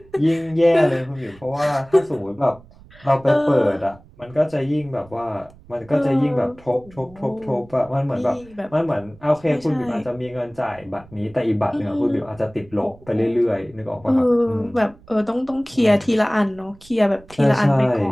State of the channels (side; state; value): right; noise; rumble, 24 dB below the sound